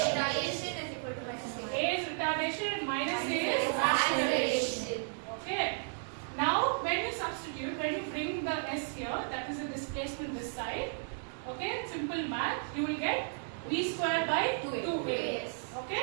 is equal to minus A. A is retardation and minus A is acceleration. Okay. Now when you substitute, when you bring the s here, that is the displacement this side. Okay, simple math, you will get v square by 2a. Yes.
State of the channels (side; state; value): left; silent; digital silence